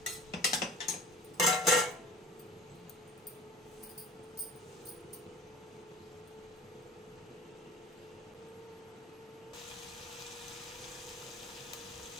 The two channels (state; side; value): normal; both; correlation 0.43